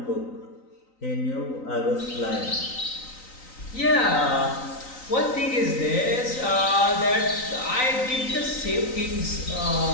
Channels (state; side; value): late; right; 3.9 ms